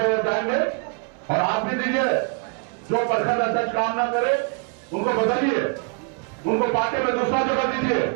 जाएंगे और आप भी दीजिए। जो प्रखंड अध्यक्ष काम ना करे उनको बदलिए, उनको पार्टी में दूसरा जगह दीजिए।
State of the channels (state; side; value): quieter; left; 36.5 dB